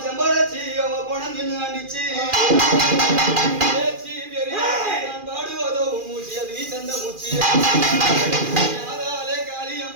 செம்படாச்சி அவ போன தின்னு ஆண்டிச்சு நான் பாடுவதோ உன் மூச்சு அது நீ தந்த மூச்சு யாதாலே காளி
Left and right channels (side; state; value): left; late; 2.4 ms